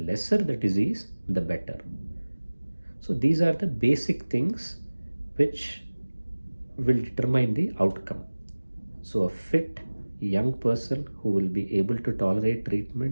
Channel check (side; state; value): both; inverted; correlation -1.00